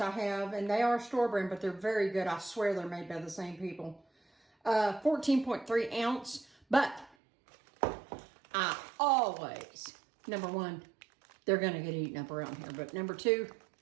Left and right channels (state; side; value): drops out; left; at 7.2 s